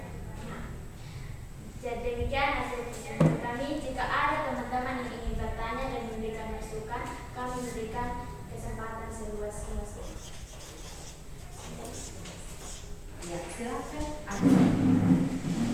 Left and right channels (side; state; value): both; identical; correlation 1.00